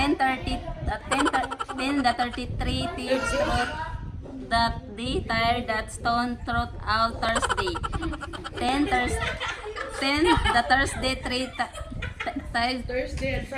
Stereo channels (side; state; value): both; identical; correlation 1.00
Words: the 33 Thebes throughout that day, tired that stone throughout Thursday. 10 the Thursday 3 times